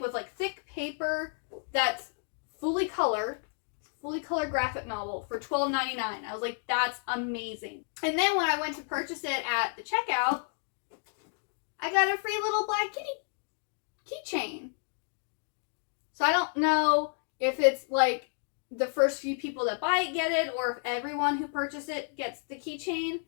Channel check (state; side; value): silent; right; 57 dB below the other